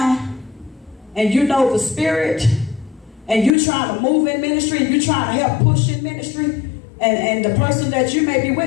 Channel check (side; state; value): right; drops out; at 3.6 s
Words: and you know the spirit and you trying to move in ministry and you trying to help push in ministry, and the person that you may be